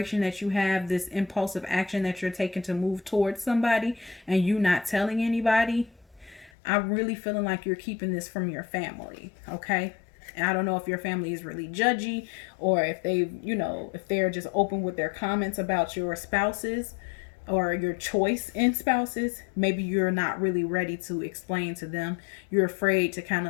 that you have, this impulsive action that you're taking to move towards somebody and you not telling anybody, I'm really feeling like you're keeping this from your family. Okay, and I don't know if your family is really judgy, or if if they're just open with their comments about your spouses or your choice in spouses. Maybe you're not really ready to explain to them. You're afraid to kind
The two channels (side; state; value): right; drops out; at 6.5 s